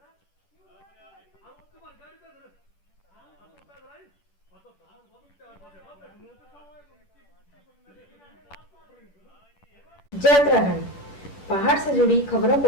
जय उत्तराखंड। पहाड़ से जुड़ी खबरों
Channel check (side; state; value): right; late; 10 ms